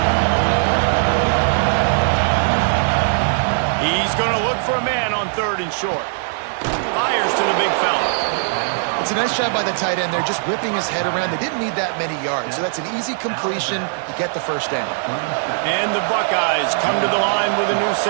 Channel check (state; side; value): silent; left; digital silence